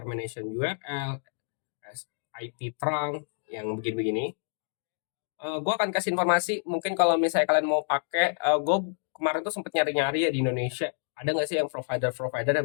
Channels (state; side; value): silent; right; digital silence